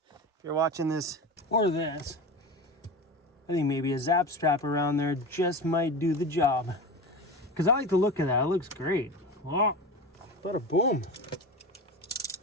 if you're watching this or this, I think maybe a zap strap around there just might do the job. Because I like the look of that. It looks great. Oh, bada boom.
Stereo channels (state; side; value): normal; both; correlation 0.28